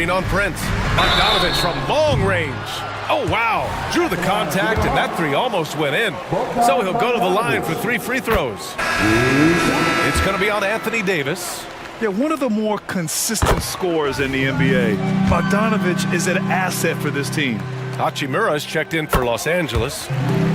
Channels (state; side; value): identical; both; correlation 1.00